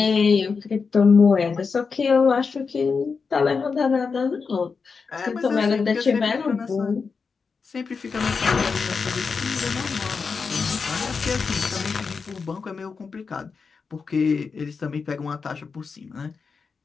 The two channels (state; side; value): quieter; right; 5.1 dB